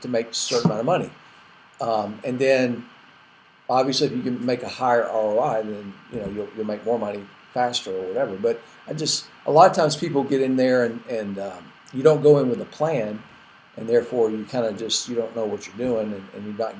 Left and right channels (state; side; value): identical; both; correlation 1.00